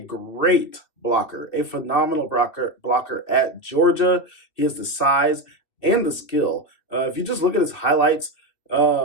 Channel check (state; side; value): late; right; 2.6 ms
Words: blocker, a phenomenal blocker at Georgia. He has the size and the skill. If you just look at his highlights,